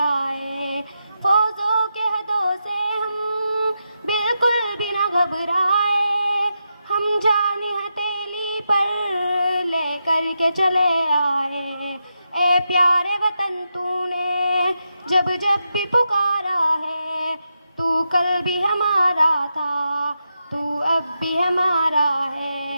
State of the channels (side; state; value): both; inverted; correlation -0.86